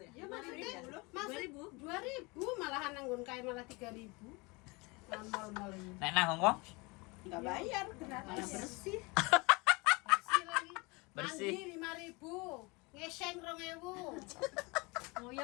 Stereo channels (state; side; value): quieter; right; 26.6 dB